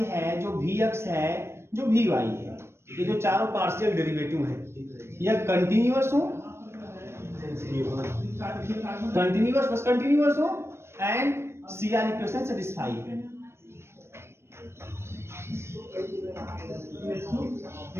है, जो vx है, जो vy है, ये जो चारों पार्शियल डेरिवेटिव है, यह कंटिन्यूअस हो, कंटिन्यूअस बस कंटिन्यूअस हो एंड CR इक्वेशन सेटिस्फाई है।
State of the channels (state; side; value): late; left; 0.12 ms